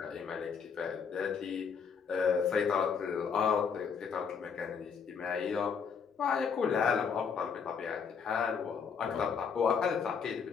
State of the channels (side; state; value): right; quieter; 6.3 dB